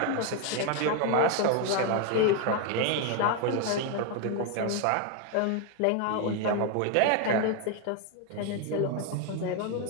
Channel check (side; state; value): both; different; correlation 0.01